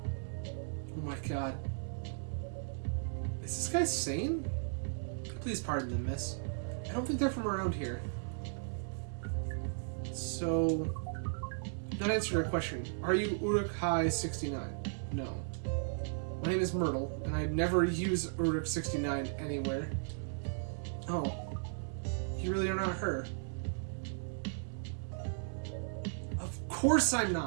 Oh my god. Is this guy sane? Please pardon them, miss. I don't think they're from around here. So, not answer your question. Are you Uruk-hai-69? No. My name is Myrtle, and I'd never use Uruk-69 anywhere. Oh. You really are not her. Of course I'm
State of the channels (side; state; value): left; silent; digital silence